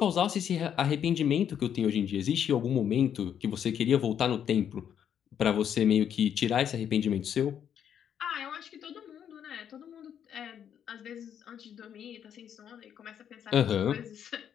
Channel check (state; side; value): quieter; right; 8.9 dB